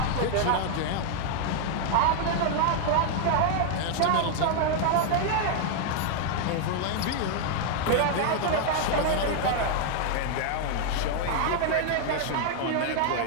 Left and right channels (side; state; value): both; different; correlation 0.00